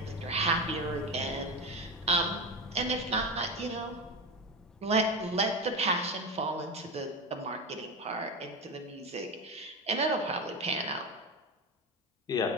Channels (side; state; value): both; normal; correlation 0.19